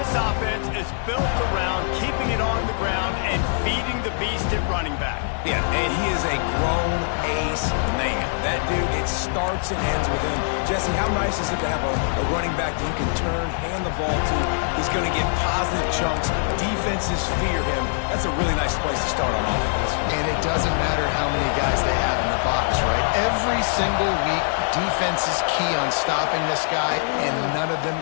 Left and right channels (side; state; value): right; silent; digital silence